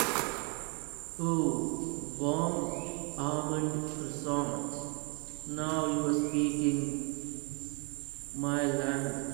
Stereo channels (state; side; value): quieter; left; 34.1 dB